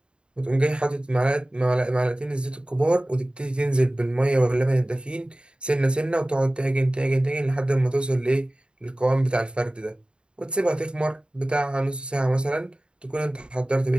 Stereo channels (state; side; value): late; left; 0.052 ms